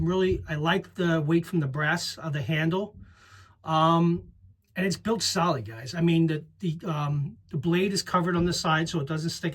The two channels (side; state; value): both; identical; correlation 1.00